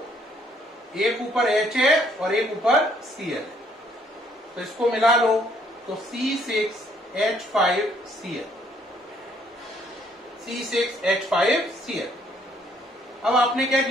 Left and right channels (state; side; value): normal; both; correlation 0.65